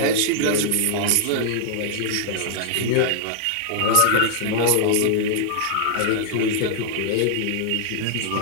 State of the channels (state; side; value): different; both; correlation -0.01